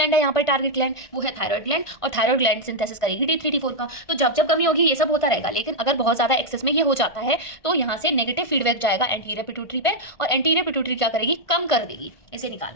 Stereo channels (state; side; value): late; right; 1.5 ms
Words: है यहाँ पर टारगेट ग्लैंड, वो है थायराइड ग्लैंड, और थायराइड ग्लैंड सिंथेसिस करेगी T3 T4 का। तो जब जब कमी होगी ये सब होता रहेगा, लेकिन अगर बहुत ज्यादा एक्सेस में ये हो जाता है तो यहाँ से नेगेटिव फीडबैक जाएगा एंटीरियर पिट्यूटरी पे, और एंटीरियर पिट्यूटरी क्या करेगी, कम कर देगी इसे